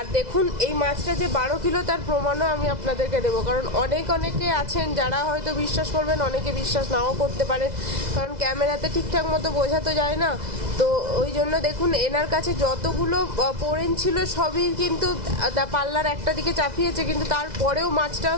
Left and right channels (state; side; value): late; left; 2.0 ms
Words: দেখুন, এই মাছটা যে 12 কিলো তার প্রমাণও আমি আপনাদেরকে দেবো, কারণ অনেকে আছেন যারা হয়তো বিশ্বাস করবেন, অনেকে বিশ্বাস নাও করতে পারেন, কারণ ক্যামেরাতে ঠিকঠাক মতো বোঝা তো যায় না। তো ওই জন্য দেখুন, এনার কাছে যতগুলো পোড়েন ছিল সবই কিন্তু পাল্লার একটা দিকে চাপিয়েছে, কিন্তু তারপরেও মাছটাও